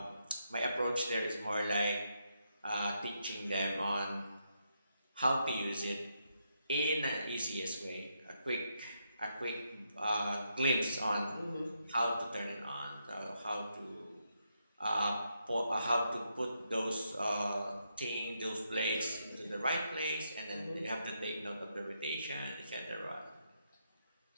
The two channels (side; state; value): both; inverted; correlation -0.80